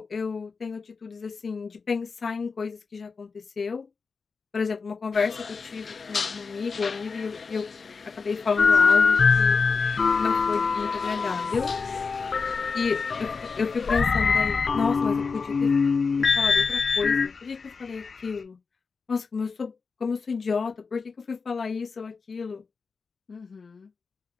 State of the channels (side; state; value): right; quieter; 4.9 dB